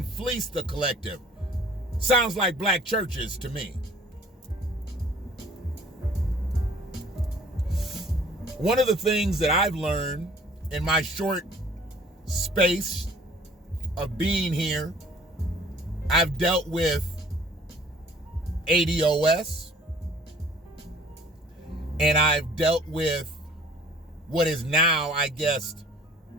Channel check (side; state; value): both; normal; correlation 0.52